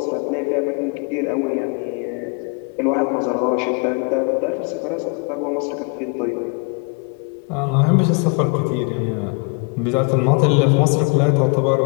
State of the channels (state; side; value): quieter; right; 34.4 dB